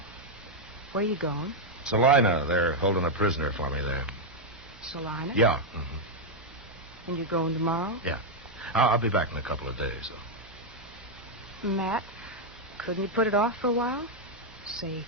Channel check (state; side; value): normal; both; correlation -0.01